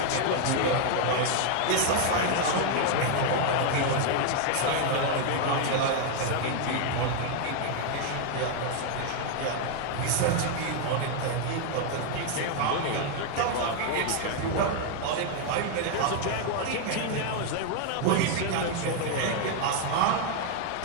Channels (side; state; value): both; different; correlation 0.00